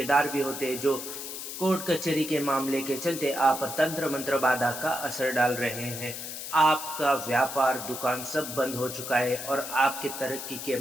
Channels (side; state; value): left; noise; hiss, 8 dB below the sound